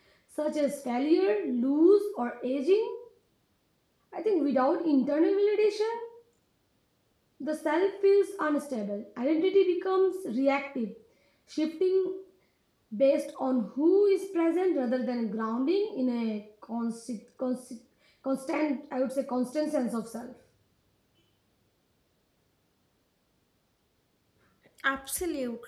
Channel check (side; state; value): both; identical; correlation 1.00